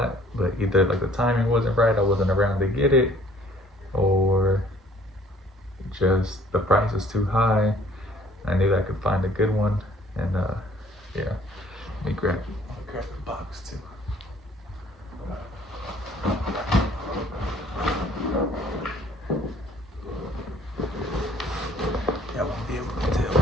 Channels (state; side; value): normal; both; correlation 0.57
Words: but either like the timing wasn't right, I wasn't around to get it, or just the price is too high. I knew I could find a good one, and yeah, let me grab the box too. Y'all won't be able to tell